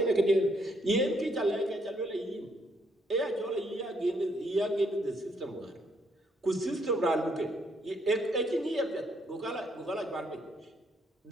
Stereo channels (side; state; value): both; normal; correlation 0.72